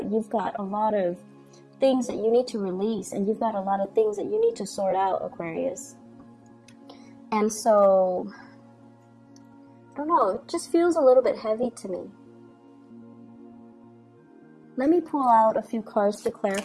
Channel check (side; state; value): both; identical; correlation 1.00